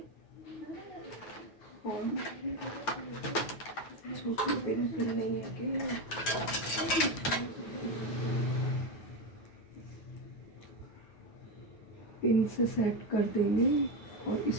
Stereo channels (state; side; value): late; right; 9.1 ms